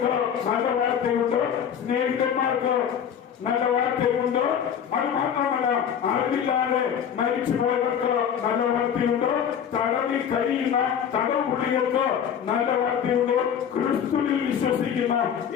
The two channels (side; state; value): right; quieter; 8.4 dB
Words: നല്ല വാർത്തയുണ്ട്, സ്നേഹിതന്മാർക്ക് നല്ല വാർത്തയുണ്ട്. അത് മാത്രമല്ല, അറിവില്ലാതെ മരിച്ചുപോയവർക്ക് നല്ല വാർത്തയുണ്ട്, തടവിൽ കഴിയുന്ന തടവുപുള്ളികൾക്ക് നല്ല വാർത്തയുണ്ട്, ക്രിസ്തുവിൽ വിശ്വസിക്കുന്ന